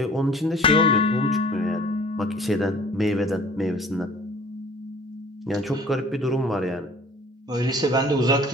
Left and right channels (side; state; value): both; normal; correlation 0.50